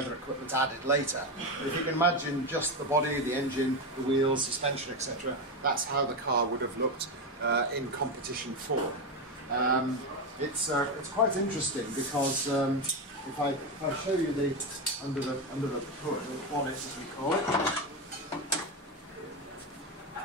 equipment added later. But if you can imagine just the body, the engine, the wheels, suspension, etc., that's how the car would have looked in competition form. It's quite interesting because if I show you the under the hood, the bonnet as we call it,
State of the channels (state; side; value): normal; both; correlation 0.13